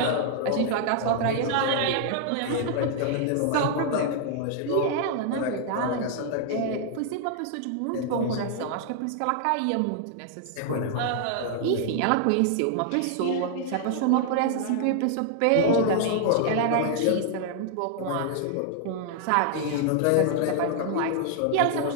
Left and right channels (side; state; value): both; different; correlation 0.00